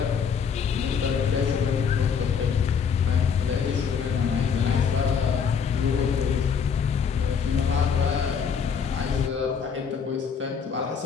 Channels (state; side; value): quieter; right; 6.6 dB